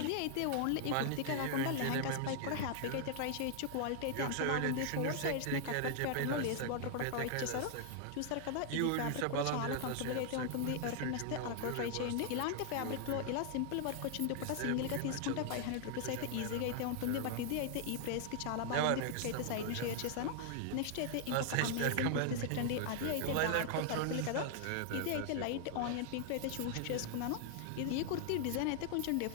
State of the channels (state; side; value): different; both; correlation 0.00